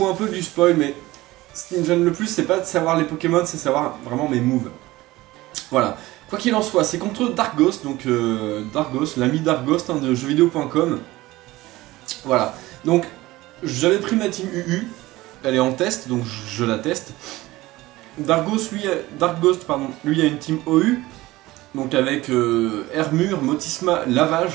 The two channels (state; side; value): quieter; left; 18.5 dB